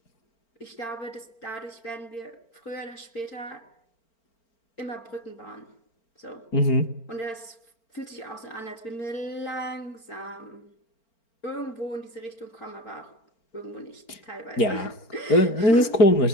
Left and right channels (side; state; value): right; late; 4.4 ms